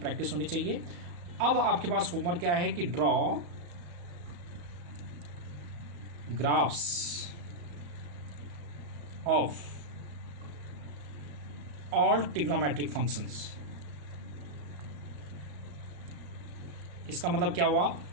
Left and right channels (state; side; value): late; left; 35 ms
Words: होनी चाहिए। अब आपके पास होमवर्क क्या है कि draw graphs of all trigonometric functions. इसका मतलब क्या हुआ